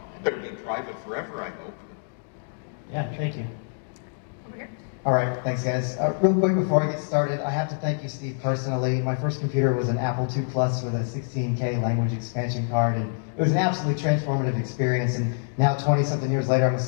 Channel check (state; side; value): silent; right; digital silence